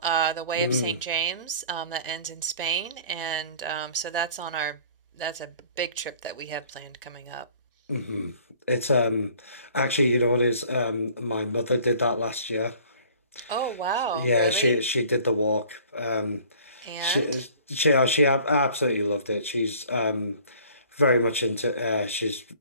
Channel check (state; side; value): inverted; both; correlation -0.51